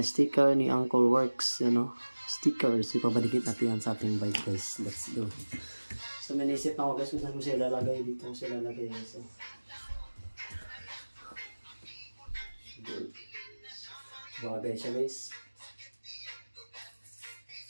sticker ni Uncle Works, stickers. Ipapadikit natin yan sa ating bike guys. Let's go. So may naisip na ako guys kung saan ko siya lalagay dito. Kung siya lalagay guys. Bagay siya guys.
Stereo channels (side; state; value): both; inverted; correlation -1.00